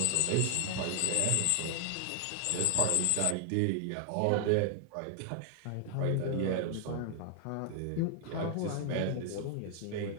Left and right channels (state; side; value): different; both; correlation 0.00